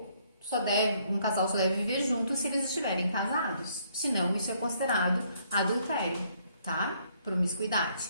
casal só deve viver junto se eles estiverem casados. Senão, isso é considerado adultério, tá? Promiscuidade.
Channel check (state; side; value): inverted; both; correlation -0.67